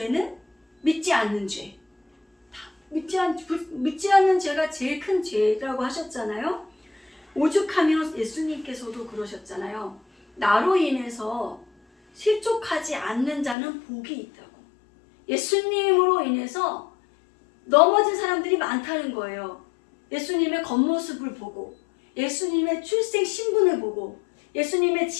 믿지 않는 죄. 믿지 않는 죄가 제일 큰 죄라고 하셨잖아요. 오죽하면 예수님께서도 그러셨잖아요. 나로 인해서 실족하지 않는 자는 복이 있다고. 예수님으로 인해서 넘어진 사람들이 많다는 거예요. 예수님의 겉모습을 보고, 예수님의 출생 신분을 보고, 예수님의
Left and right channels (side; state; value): right; drops out; at 13.6 s